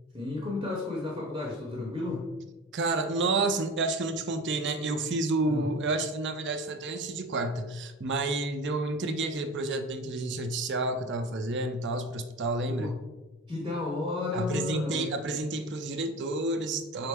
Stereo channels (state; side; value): normal; both; correlation 0.34